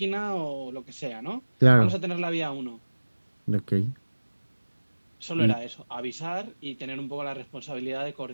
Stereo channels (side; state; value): both; inverted; correlation -1.00